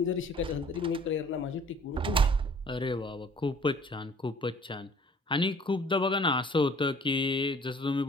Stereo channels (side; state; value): both; normal; correlation 0.52